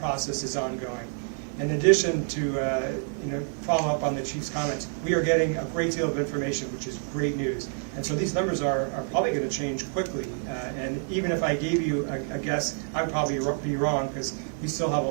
is ongoing. In addition to follow up on the chief's comments, we are getting a great deal of information, which is great news. And so these numbers are probably going to change quickly. And even if I gave you a guess, I'd probably be wrong because we still have a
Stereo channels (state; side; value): silent; left; 60 dB below the other